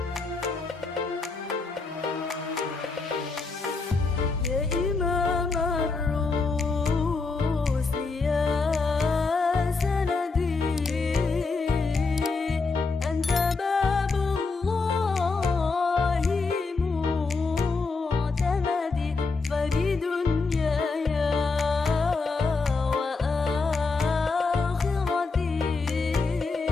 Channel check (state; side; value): quieter; right; 4.1 dB